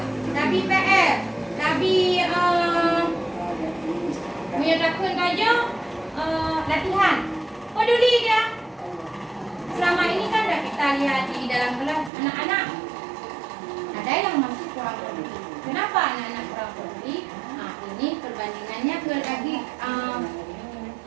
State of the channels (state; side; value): drops out; left; at 12.1 s